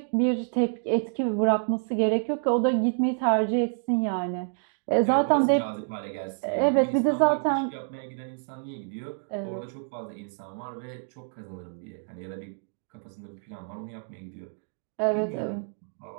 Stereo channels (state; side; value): silent; left; digital silence